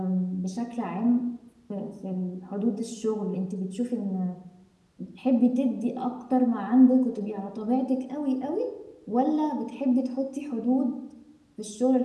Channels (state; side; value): identical; both; correlation 1.00